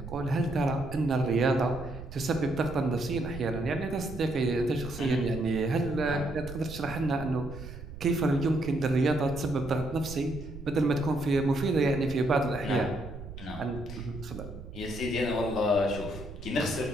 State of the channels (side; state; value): right; noise; rumble, 12 dB below the sound